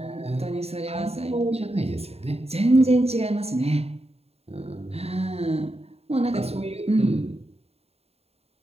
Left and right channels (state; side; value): late; left; 0.30 ms